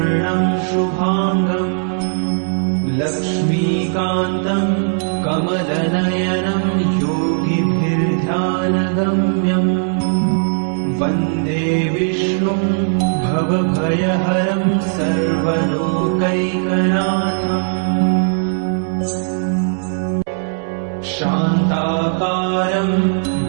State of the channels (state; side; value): silent; left; 65 dB below the other